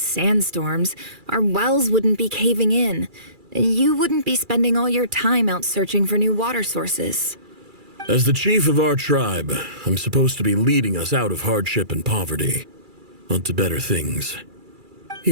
our wells wouldn't be caving in. And you wouldn't be spending all your time out searching for new water sources. As the chief of our tribe, I'm supposed to be leading us out of hardship and poverty, onto better things.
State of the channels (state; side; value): late; left; 2.3 ms